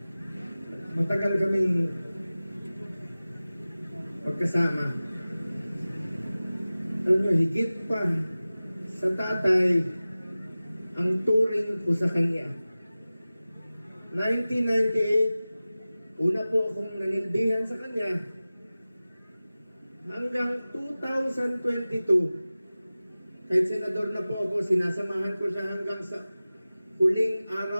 Matagal kaming pagkasama. Alam nyo, higit pa sa tatay ang turing ko sa kanya. 1998, una po akong nanilbihan sa kanya. Hanggang 2022, kahit senador na po ako, sinasamahan ko siya hanggang sa huling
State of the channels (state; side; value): inverted; both; correlation -0.97